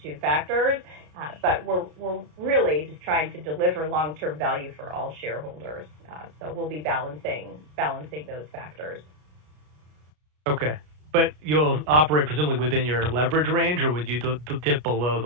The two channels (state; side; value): late; left; 33 ms